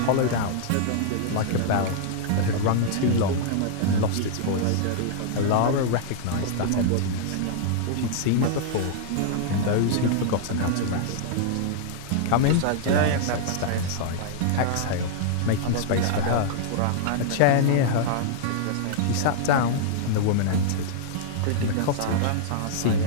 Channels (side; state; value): both; different; correlation -0.01